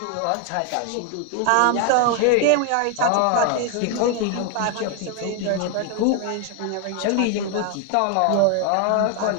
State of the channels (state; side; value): different; both; correlation 0.00